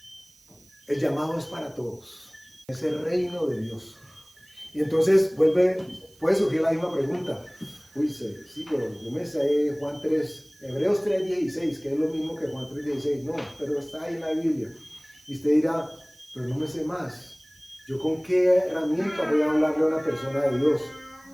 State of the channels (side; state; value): right; noise; hiss, 28 dB below the sound